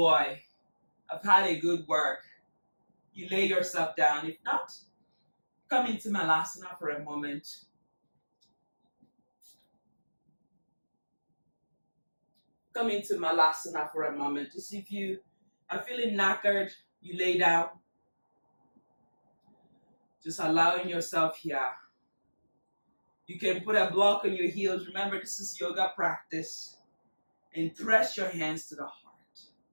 I've had a good work, you lay yourself down. If not, come into Malasana for a moment. Come into Malasana for a moment. Just if you are feeling knackered, you lay down. Just allowing yourself here. You can put a block on your heels. Remember, this is yoga practice. And press your hands to the heart.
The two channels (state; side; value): inverted; both; correlation -1.00